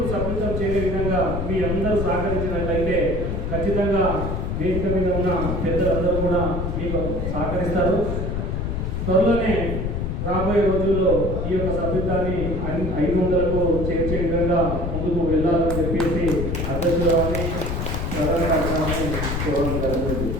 సభ్యత్వం చేరే విధంగా మీ అందరూ సహకరించినట్లయితే ఖచ్చితంగా వేదిక మీద ఉన్న పెద్దలందరూ కూడా మీకు సహకరిస్తారు. త్వరలోనే రాబోయే రోజుల్లో ఈ యొక్క సభ్యత్వాన్ని 500కు చేర్చే విధంగా ముందుకు వెళ్ళాలని చెప్పేసి అధ్యక్షులని ప్రధాన కార్యక్రమాన్ని చూడడం జరుగుతుంది.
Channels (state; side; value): noise; left; rumble, 2 dB below the sound